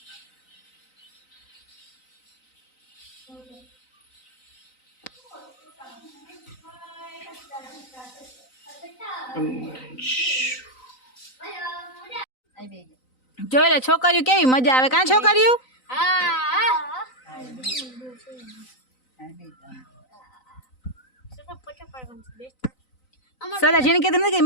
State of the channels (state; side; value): late; right; 3.9 ms